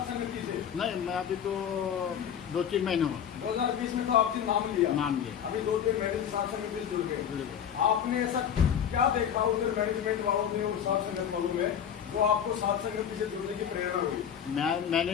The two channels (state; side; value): quieter; right; 8.7 dB